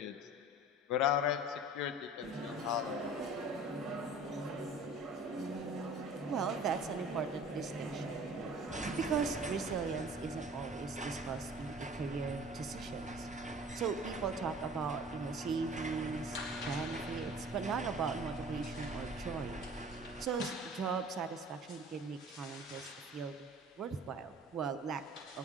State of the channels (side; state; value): both; normal; correlation 0.45